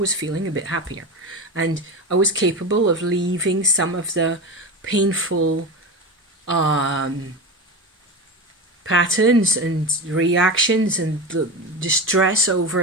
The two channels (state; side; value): normal; both; correlation 0.23